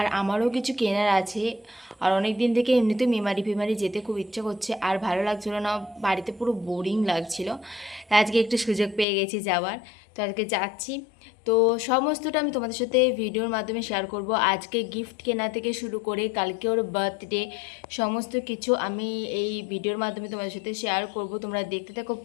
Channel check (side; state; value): right; drops out; at 9.1 s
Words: আমারও কিছু কেনার আছে। আর অনেক দিন থেকে এমনিতে মেমারি ফেমারি যেতে খুব ইচ্ছে করছে, আর ভালো লাগছিল না, বাড়িতে পুরো বোরিং লাগছিল। আজকে একটু সুযোগ পেয়ে গেছি যাওয়ার, তো আজকে যাচ্ছি। তো সমস্তটা আমি তোমাদের সাথে ভিডিওর মাধ্যমে শেয়ার করব। আজকে গিফট কেনা থেকে শুরু করে কালকে ওর বার্থডে, সমস্ত কিছু আমি এই ভিডিওর মাধ্যমে তোমাদের সাথে শেয়ার করব। তোমরা দেখতে থাকো